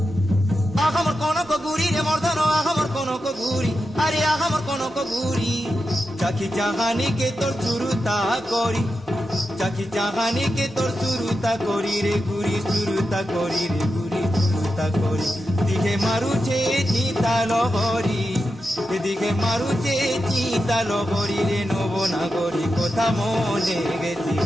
আহামর কনক গুরি রে মর্দন আহামর কনক গুরি আরে আহামর কনক গুরি চাকি চাহানি কে তোর চুরুতা করি চাকি চাহানি কে তোর চুরুতা করি রে গুরি চুরুতা করি রে গুরি চুরুতা করি দিকে মারুছে চিতা লহরি এদিকে মারুছে চিতা লহরি রে নবনাগরি কথা মনে গেছি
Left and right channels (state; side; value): normal; both; correlation 0.89